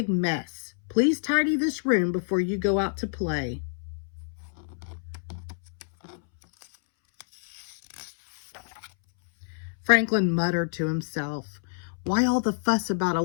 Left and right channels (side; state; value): right; silent; 60 dB below the other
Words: mess. Please tidy this room before you go out to play." Franklin muttered to himself, "Why all the fuss about a